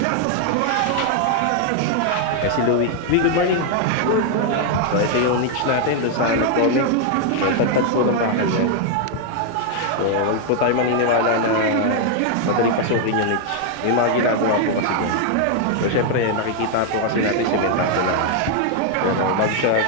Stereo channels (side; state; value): both; different; correlation 0.00